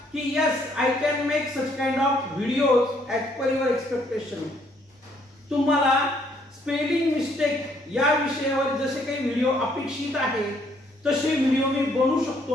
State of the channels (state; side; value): normal; both; correlation 0.67